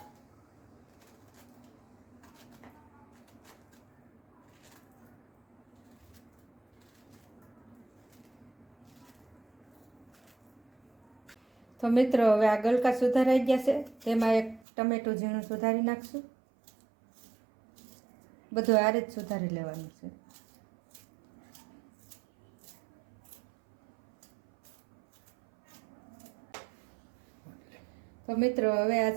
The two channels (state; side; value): drops out; left; at 14.6 s